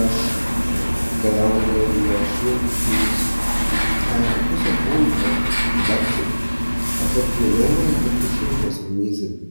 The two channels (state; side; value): inverted; both; correlation -1.00